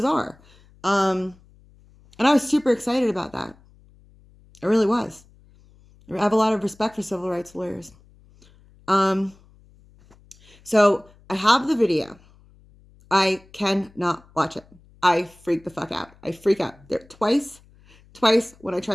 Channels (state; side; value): noise; left; hum, 28 dB below the sound